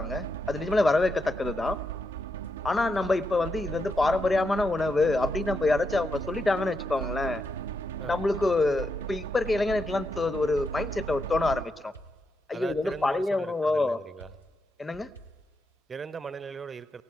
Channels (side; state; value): both; normal; correlation 0.83